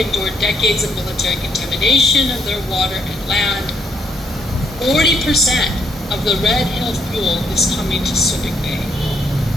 decades of military contamination of their water and land. 40% of the Red Hill fuel is coming to Subic Bay.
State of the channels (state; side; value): normal; both; correlation 0.73